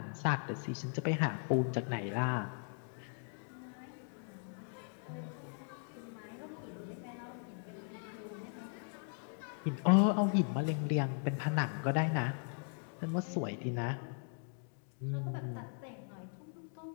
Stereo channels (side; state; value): right; silent; 52 dB below the other